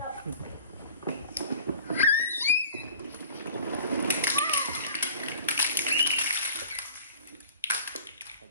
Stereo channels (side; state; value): both; inverted; correlation -0.44